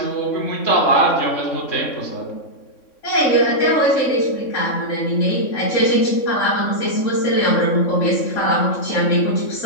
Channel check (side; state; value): right; late; 3.6 ms